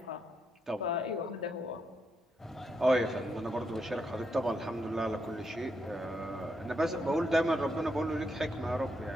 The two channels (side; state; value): both; normal; correlation 0.80